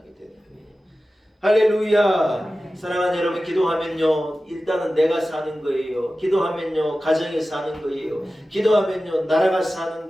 되는 거예요. 할렐루야. 사랑하는 여러분, 기도하면요 일단은 내가 사는 거예요. 기도하면요 가정이 사는 거예요. 기도하면요 나라가 사는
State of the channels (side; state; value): both; normal; correlation 0.95